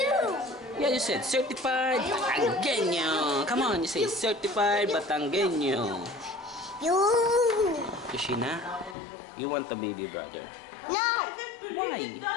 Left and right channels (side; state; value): right; drops out; at 9.0 s